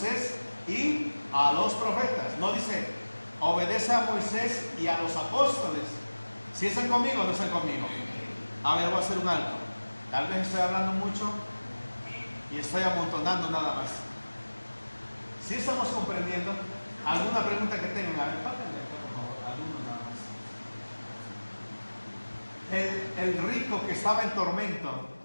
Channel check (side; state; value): both; inverted; correlation -1.00